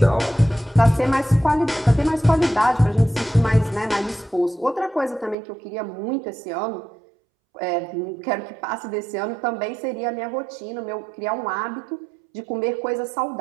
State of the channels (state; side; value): drops out; left; at 5.4 s